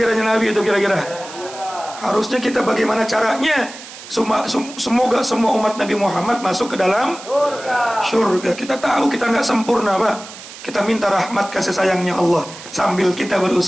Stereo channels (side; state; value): right; noise; hiss, 15 dB below the sound